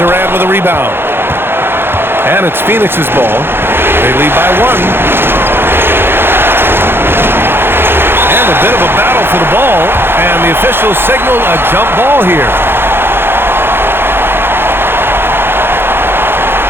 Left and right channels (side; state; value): left; late; 0.11 ms